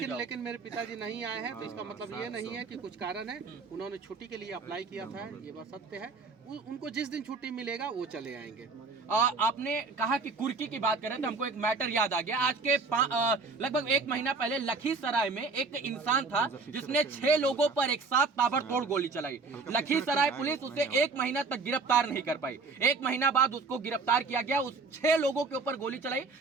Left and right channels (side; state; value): left; quieter; 4.2 dB